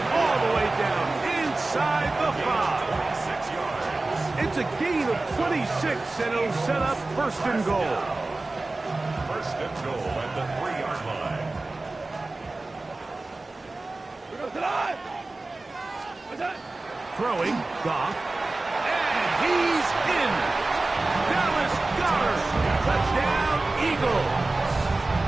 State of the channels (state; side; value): quieter; left; 3.2 dB